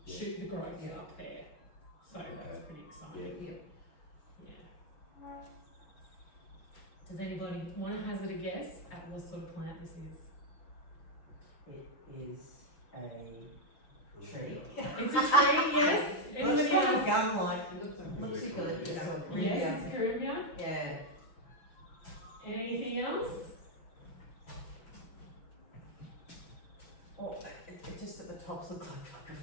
shoot the growth Yeah. up there. So that's pretty exciting. Yeah. Does anybody want to hazard a guess at what sort of plant this is? It is a tree. It's a tree, yes. Anybody Looks kind of else? gum-like. Is Looks it eucalyptus or Yes, Corinthia. it's Caribbean. Yeah. Anything else? Or it just at the tops look like a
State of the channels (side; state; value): right; late; 6.1 ms